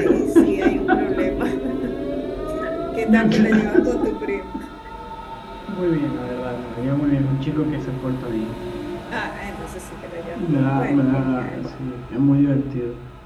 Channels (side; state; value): both; identical; correlation 1.00